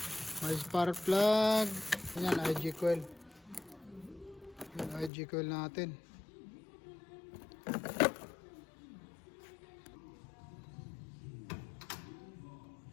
May spark plug. Yan, IG coil. Yan, IG coil natin.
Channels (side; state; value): right; drops out; at 5.1 s